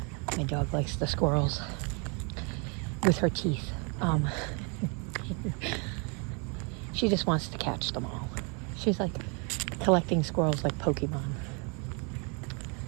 My dog likes the squirrels with her teeth. She just wants to catch them all. She's like collecting squirrels like Pokemon.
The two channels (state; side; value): quieter; left; 34.3 dB